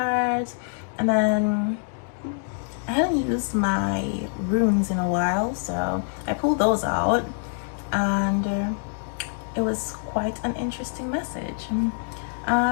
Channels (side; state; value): right; silent; digital silence